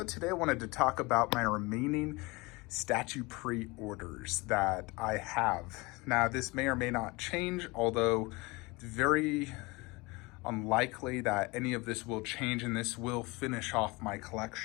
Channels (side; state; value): right; quieter; 24.5 dB